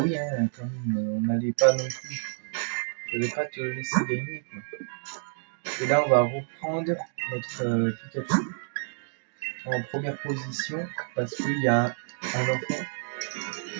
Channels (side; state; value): left; silent; digital silence